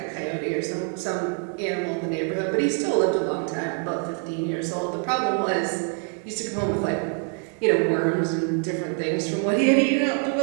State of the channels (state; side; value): quieter; left; 38.3 dB